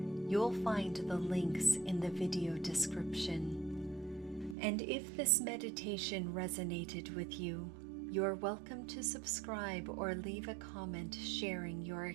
You'll find the links in the video description. And if this meditation resonated with you, you're welcome to subscribe or leave a comment sharing your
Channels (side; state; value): left; drops out; at 4.5 s